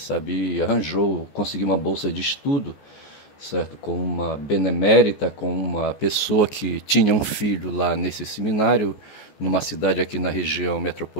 e arranjou, conseguiu uma bolsa de estudo, certo, com uma benemérita, com uma pessoa que tinha um filho lá nesse seminário, numa cidade aqui na região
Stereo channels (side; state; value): right; late; 14 ms